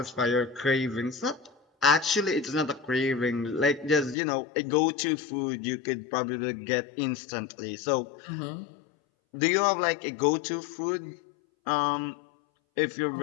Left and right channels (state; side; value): drops out; right; at 4.2 s